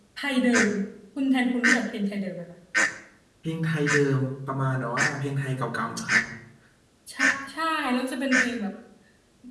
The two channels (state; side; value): identical; both; correlation 1.00